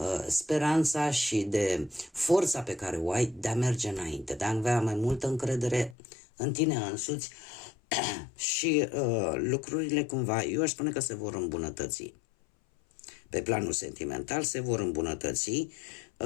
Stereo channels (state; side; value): drops out; right; at 6.0 s